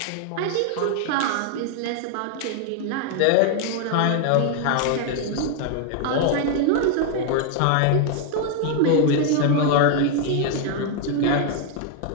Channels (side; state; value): both; different; correlation 0.00